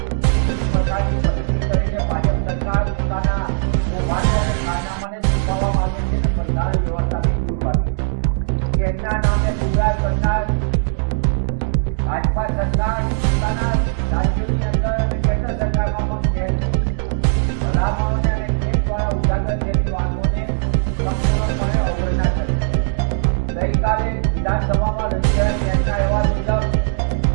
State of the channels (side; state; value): left; silent; digital silence